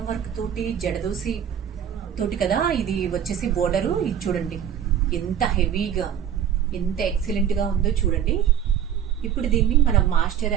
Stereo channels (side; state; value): left; quieter; 9.3 dB